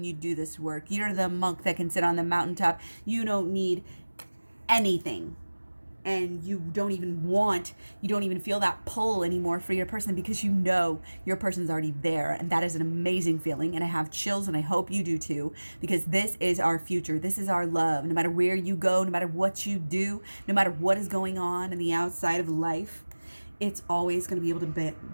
you do this work. You're the monk that can sit on the mountaintop. You don't need anything. And you don't even feel that pull anymore for your person because your person's already there. And that is an amazing feeling. And I have chills, and I hope you do too, because this is our future. This is our love. No matter where you go, no matter what you do, no matter what is going on in the outside of life, it's always going to be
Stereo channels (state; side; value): inverted; both; correlation -1.00